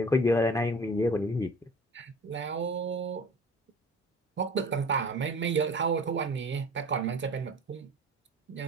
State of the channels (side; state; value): both; normal; correlation 0.42